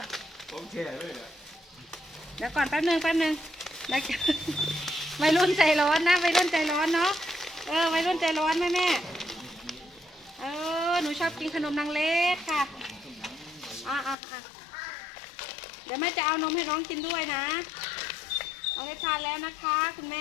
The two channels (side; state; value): right; drops out; at 14.2 s